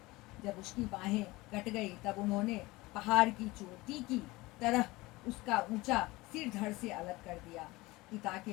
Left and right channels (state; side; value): quieter; right; 21.0 dB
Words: जब उसकी बाहें कट गई तब उन्होंने पहाड़ की चोटी की तरह उसका ऊंचा सिर धड़ से अलग कर दिया। पिता